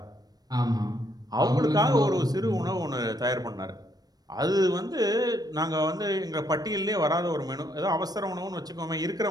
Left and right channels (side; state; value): left; late; 0.19 ms